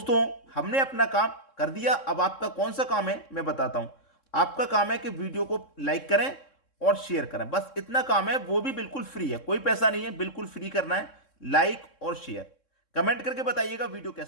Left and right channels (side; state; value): right; late; 3.7 ms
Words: हमने अपना काम कर दिया, अब आपका कौन सा काम है मैं बताता हूं। आपका काम है कि वीडियो को लाइक करें और शेयर करें, बस इतना काम है, वो भी बिल्कुल फ्री है, कोई पैसा नहीं है, बिल्कुल फ्री करना है, लाइक और शेयर। कमेंट करके बताइएगा वीडियो